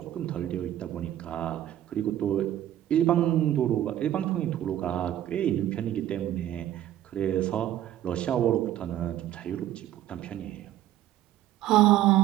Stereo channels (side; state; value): left; quieter; 12.5 dB